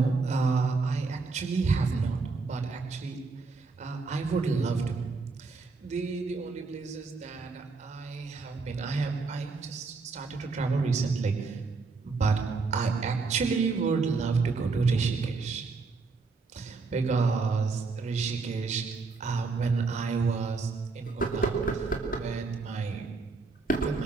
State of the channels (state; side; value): quieter; left; 4.3 dB